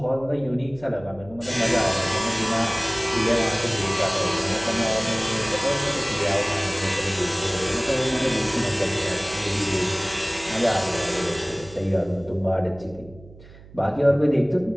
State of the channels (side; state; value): right; noise; hum, 20 dB below the sound